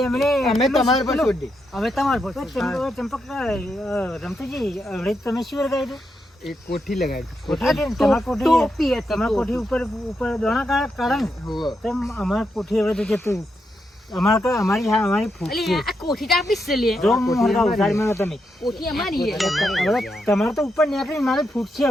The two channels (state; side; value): normal; both; correlation 0.83